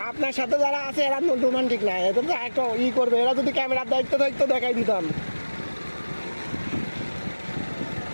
আপনার সাথে যারা আছে এরা রোমান্টিক না, এদের তো একটা করবে, এরা যদি ক্যামেরার দায়িত্ব থাকতো দেখাই দিতাম।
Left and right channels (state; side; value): inverted; both; correlation -1.00